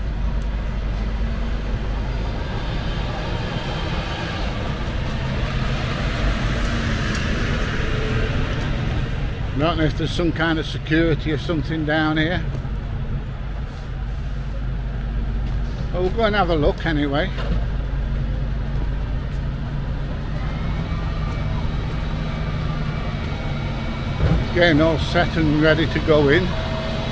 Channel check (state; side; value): identical; both; correlation 1.00